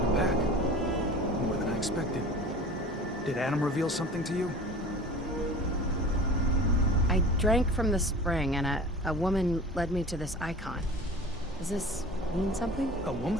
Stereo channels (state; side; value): normal; both; correlation 0.40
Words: back. More than I expected. Did Adam reveal something to you? I drank from the spring, and a woman led me to this icon. Does this mean something? A